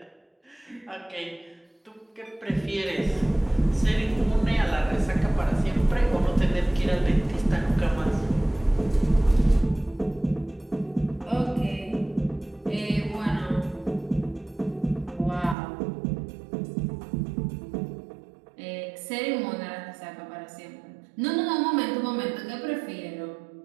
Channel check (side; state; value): left; drops out; at 15.6 s